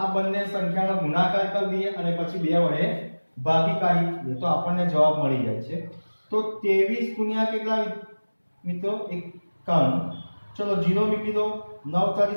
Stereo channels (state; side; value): inverted; both; correlation -1.00